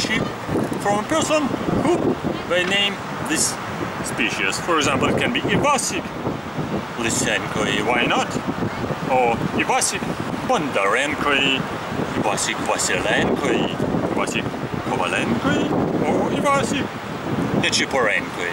from a person who will name this species. For example, it can be Ivasik Lysenkoi, why not? Or Ivasik Bondarenkoi, Ivasik Vasilenkoi, Ivasik Kovalenkoi, or Ivasik Nechiporenkoi.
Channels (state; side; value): identical; both; correlation 1.00